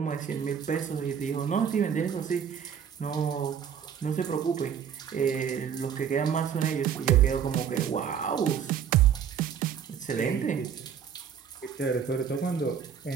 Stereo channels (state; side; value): quieter; left; 8.0 dB